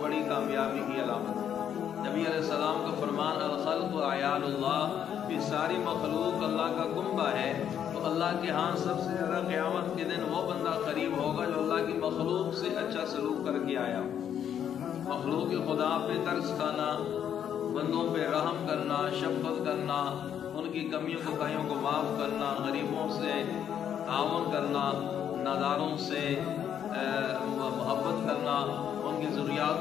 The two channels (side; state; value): right; quieter; 9.2 dB